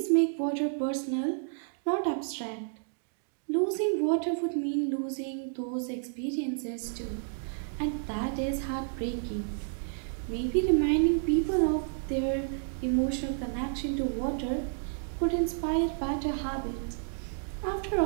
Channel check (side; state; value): left; silent; digital silence